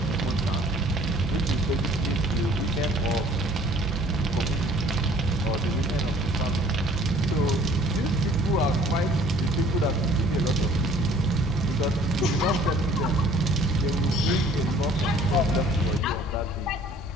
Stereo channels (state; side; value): normal; both; correlation 0.54